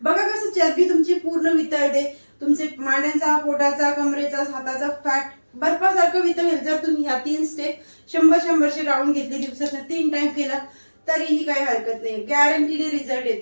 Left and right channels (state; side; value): inverted; both; correlation -1.00